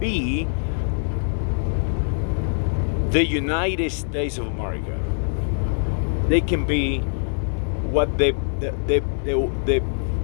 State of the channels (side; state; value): right; silent; digital silence